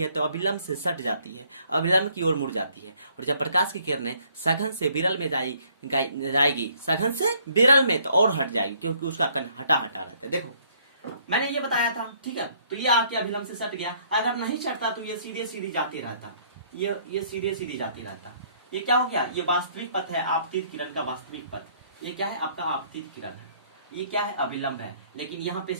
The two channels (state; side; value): inverted; both; correlation -0.63